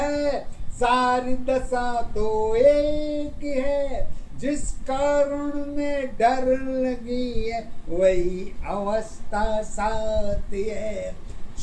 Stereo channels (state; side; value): identical; both; correlation 1.00